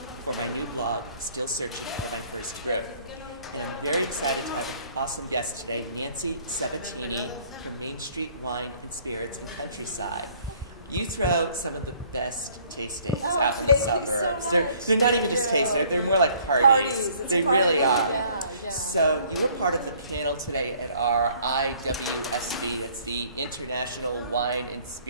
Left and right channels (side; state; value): both; inverted; correlation -0.59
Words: for my new blog, Still Searching for My First Growth. And I'm very excited to have an awesome guest today, Nancy Sabatini from Mainstreet Wine and Spirits in Countryside. You throw some of the best tastings out in the suburbs. So they're not even just tastings, they're more like parties. It's they a party. really are. Yeah. So you were part of the panel today at our IWSB, that's the International Wine and